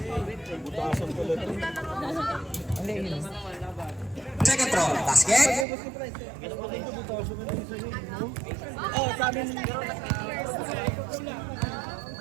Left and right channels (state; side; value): drops out; left; at 5.7 s